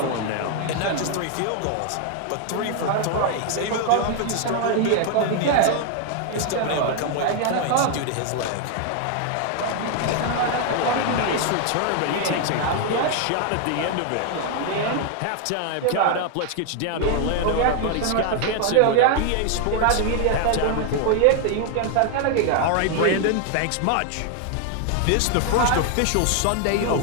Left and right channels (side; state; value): both; different; correlation 0.00